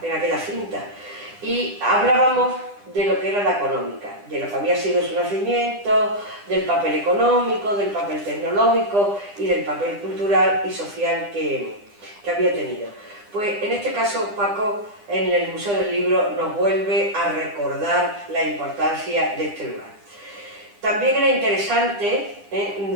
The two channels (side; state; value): left; late; 9.8 ms